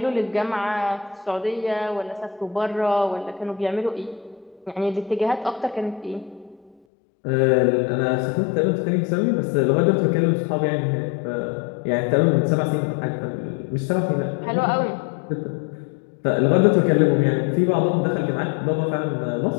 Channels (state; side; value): drops out; right; at 6.8 s